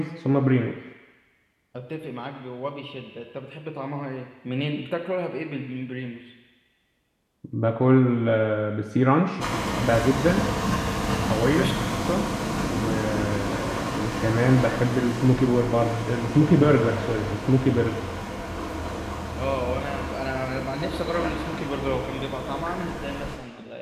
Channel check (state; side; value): identical; both; correlation 1.00